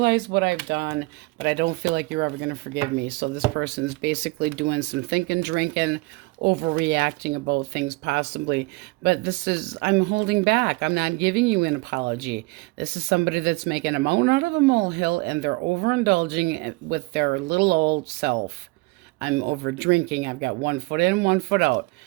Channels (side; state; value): left; quieter; 24.7 dB